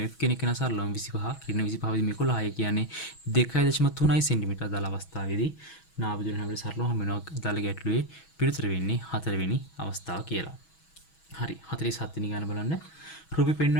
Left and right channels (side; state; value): right; late; 6.2 ms